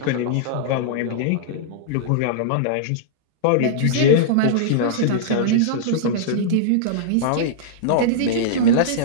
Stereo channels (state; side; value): different; both; correlation -0.02